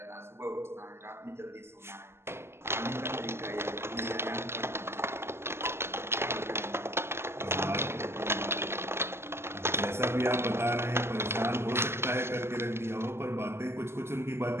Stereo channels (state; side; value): late; left; 0.12 ms